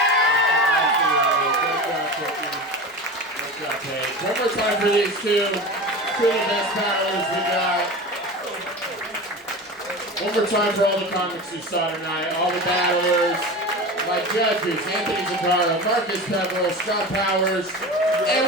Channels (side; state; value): both; normal; correlation 0.30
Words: Great job, Paige. One more time for these two of the best battlers we got. One more time for all the comics you saw tonight, all the battlers. My judges, Anthony Zuccaro, Marcus Peverill, Scott Powers,